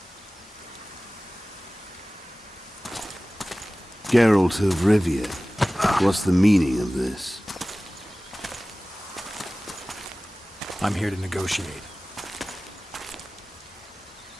Geralt of Rivia. What's the meaning of this? I'm here to negotiate.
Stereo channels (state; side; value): normal; both; correlation 0.98